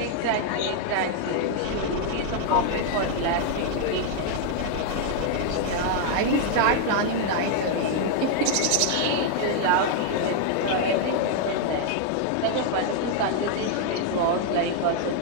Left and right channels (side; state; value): both; different; correlation 0.00